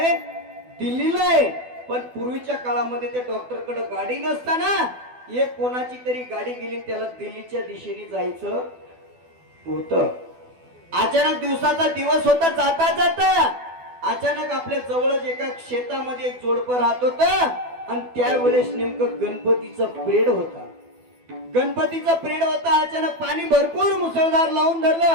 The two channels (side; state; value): left; late; 12 ms